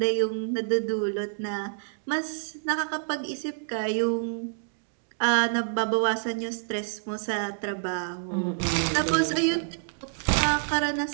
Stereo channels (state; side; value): silent; left; digital silence